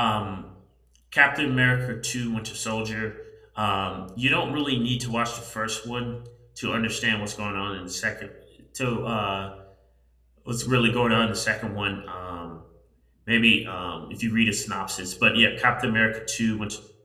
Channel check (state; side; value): identical; both; correlation 1.00